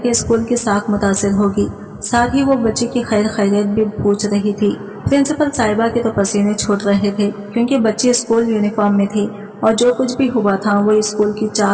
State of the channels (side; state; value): both; identical; correlation 1.00